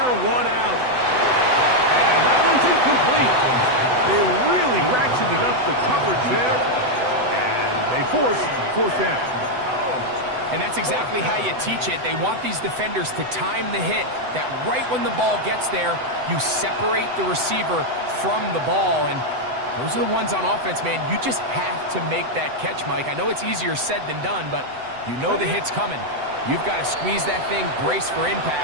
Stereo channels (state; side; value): late; left; 7.9 ms